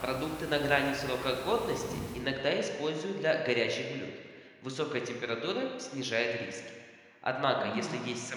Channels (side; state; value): both; identical; correlation 1.00